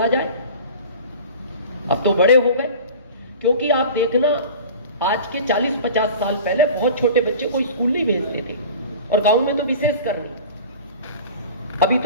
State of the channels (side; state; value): both; inverted; correlation -0.39